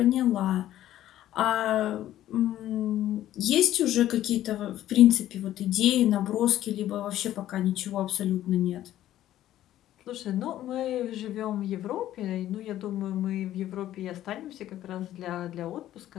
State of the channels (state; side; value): quieter; right; 13.0 dB